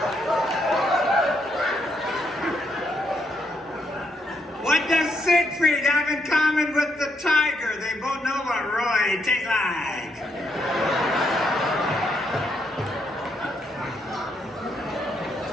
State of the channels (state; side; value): normal; both; correlation 0.76